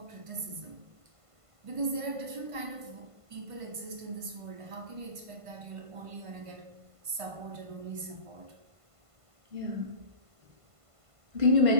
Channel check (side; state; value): left; late; 1.5 ms